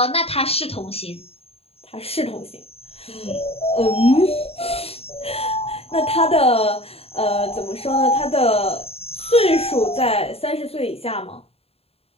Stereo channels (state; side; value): late; right; 0.29 ms